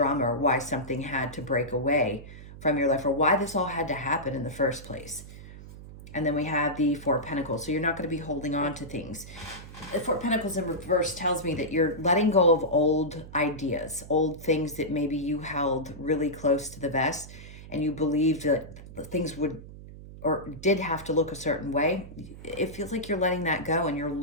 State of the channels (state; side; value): noise; right; hum, 15 dB below the sound